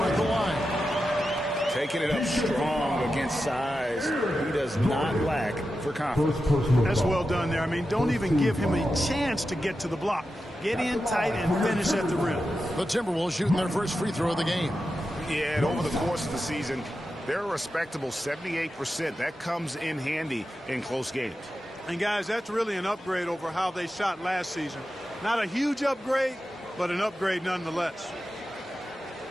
at the line. Taking it up strong against size. He does not lack for confidence. That's well done there. I mean, don't even give him a chance to get to the block. Get in tight and finish at the rim. The Timberwolves shooting their first free throw of the game. Yeah, and over the course of the season, they're a respectable 78%. That comes in handy in close games. And, guys, that's really an upgrade over how they shot last season. Not a huge upgrade, but an upgrade nonetheless.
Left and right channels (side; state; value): both; normal; correlation 0.91